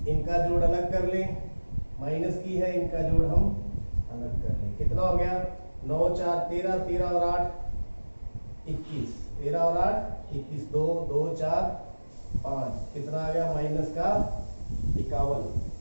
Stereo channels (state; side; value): inverted; both; correlation -1.00